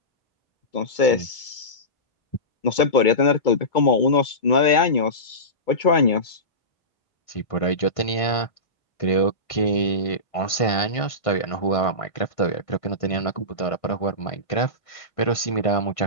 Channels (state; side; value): late; right; 1.5 ms